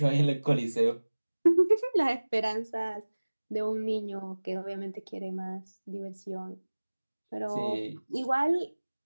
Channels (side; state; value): both; inverted; correlation -1.00